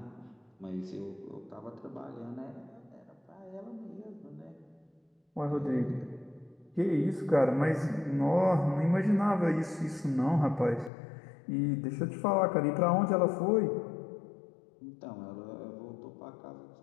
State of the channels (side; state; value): right; drops out; at 10.9 s